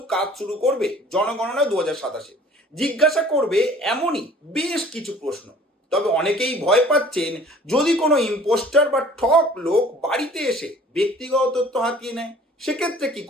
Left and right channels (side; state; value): both; normal; correlation 0.50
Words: কাজ শুরু করবে জনগণনা 2027। জিজ্ঞাসা করবে এমনই বেশ কিছু প্রশ্ন। তবে অনেকেই ভয় পাচ্ছেন যদি কোনো ইম্পোস্টার বা ঠক লোক বাড়িতে এসে ব্যক্তিগত তথ্য হাতিয়ে নেয়, সেক্ষেত্রে কি